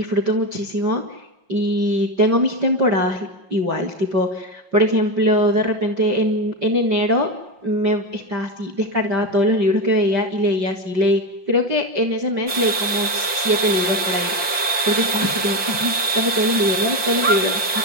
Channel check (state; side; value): late; left; 5.6 ms